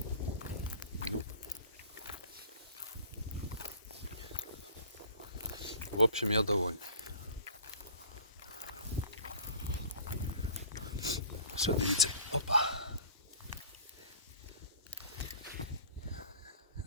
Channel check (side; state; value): both; inverted; correlation -0.44